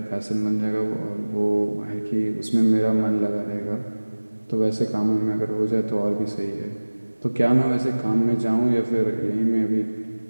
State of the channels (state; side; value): inverted; both; correlation -1.00